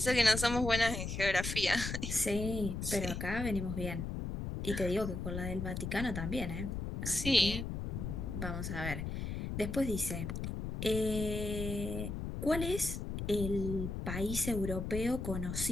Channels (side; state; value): left; noise; rumble, 4 dB below the sound